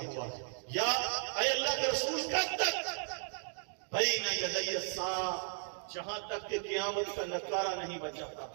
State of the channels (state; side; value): silent; left; 54 dB below the other